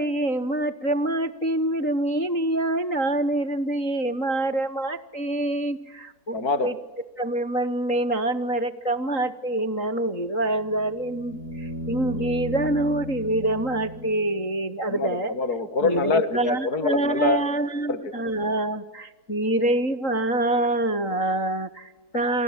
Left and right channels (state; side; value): late; right; 3.8 ms